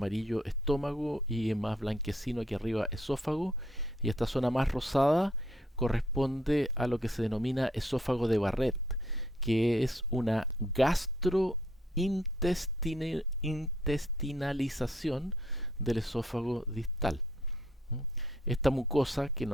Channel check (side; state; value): both; normal; correlation 0.68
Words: estómago y en más blanquecino aquí arriba esófago, y esta zona más rosada corresponde a lo que se denomina esófago de Barrett, que es una gastrointestinalización del esófago distal. Esta mucosa, que